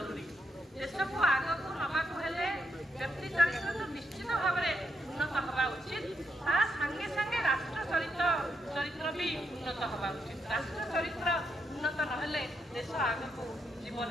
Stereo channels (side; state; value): both; normal; correlation 0.80